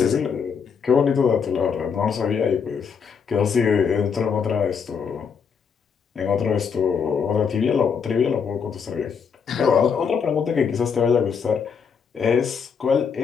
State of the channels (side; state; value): right; quieter; 6.4 dB